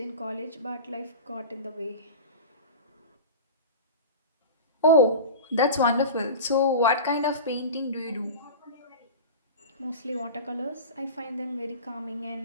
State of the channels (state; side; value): inverted; both; correlation -0.31